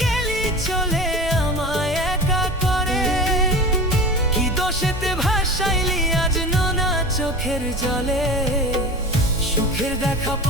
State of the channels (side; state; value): both; normal; correlation 0.32